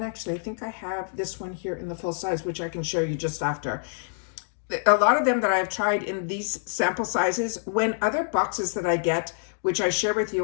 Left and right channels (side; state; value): right; silent; digital silence